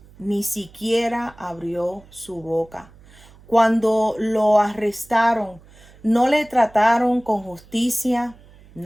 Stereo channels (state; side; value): noise; right; hum, 25 dB below the sound